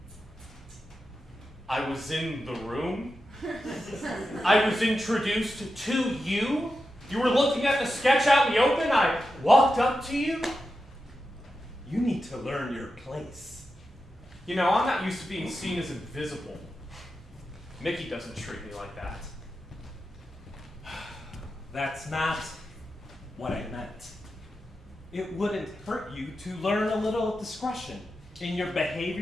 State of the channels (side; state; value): both; normal; correlation 0.90